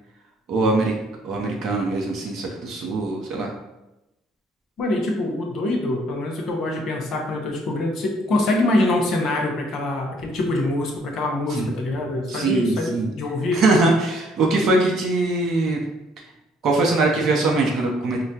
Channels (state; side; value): normal; both; correlation 0.64